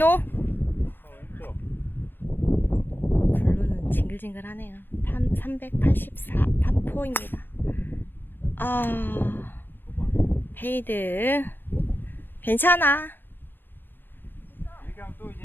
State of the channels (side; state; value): right; late; 0.097 ms